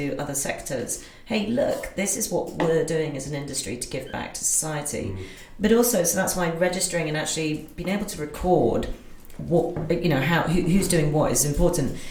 other sectors, hey, look, this is what we're doing as an industry to give back to society. But also, so that's why registering and actually being able to record what who's doing what is important.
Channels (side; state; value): both; identical; correlation 1.00